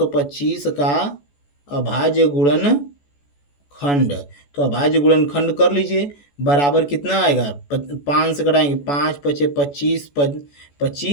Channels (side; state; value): right; late; 14 ms